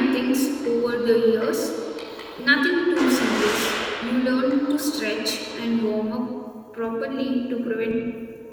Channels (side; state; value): both; identical; correlation 1.00